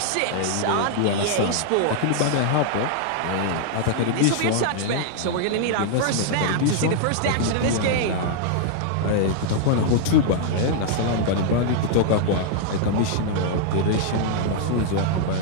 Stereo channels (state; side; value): different; both; correlation -0.01